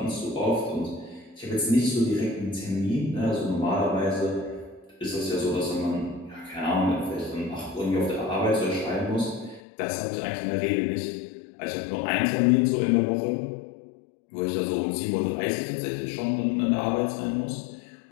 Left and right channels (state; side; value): drops out; right; at 9.6 s